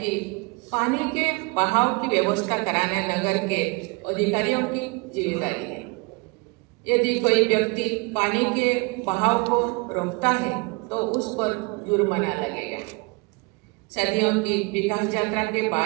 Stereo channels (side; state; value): left; quieter; 29.3 dB